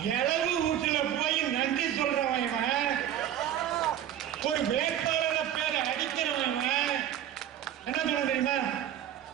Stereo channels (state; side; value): quieter; left; 10.8 dB